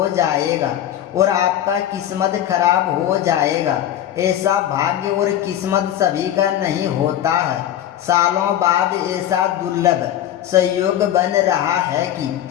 जाएगा और आपका किस्मत खराब हो जाएगा। ऐसा भाग्य और किस्मत सभी का नहीं होता है। सालों बाद ऐसा दुर्लभ संयोग बन रहा है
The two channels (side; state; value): right; quieter; 11.5 dB